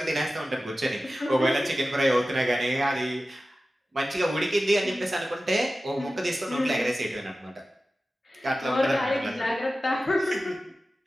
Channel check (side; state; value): both; normal; correlation 0.95